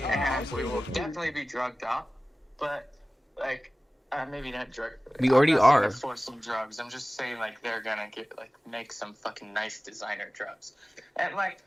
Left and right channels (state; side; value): normal; both; correlation 0.97